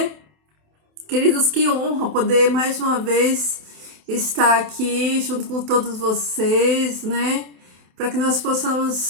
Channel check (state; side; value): late; left; 27 ms